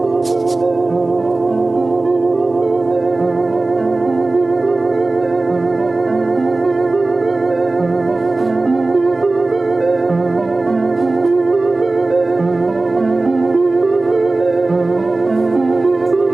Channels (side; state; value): left; quieter; 3.2 dB